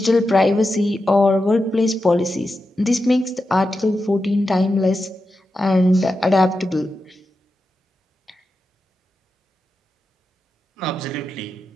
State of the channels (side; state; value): both; normal; correlation 0.90